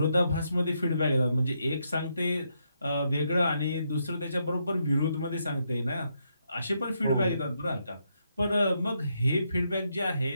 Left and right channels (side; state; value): both; inverted; correlation -0.79